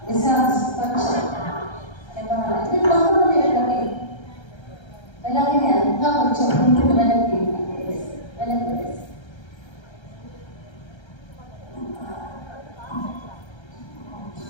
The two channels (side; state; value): right; late; 1.3 ms